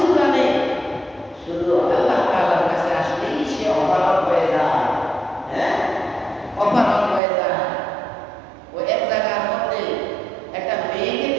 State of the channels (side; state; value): left; drops out; at 7.2 s